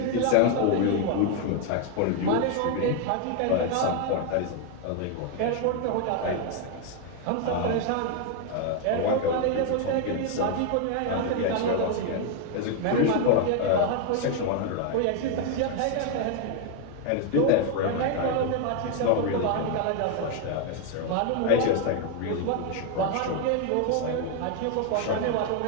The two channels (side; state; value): both; different; correlation 0.01